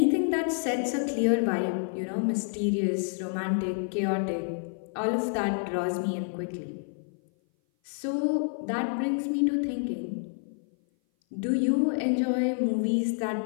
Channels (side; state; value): right; silent; 57 dB below the other